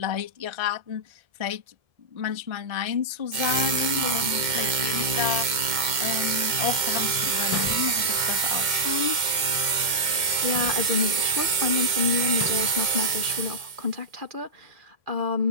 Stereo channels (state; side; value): late; left; 2.1 ms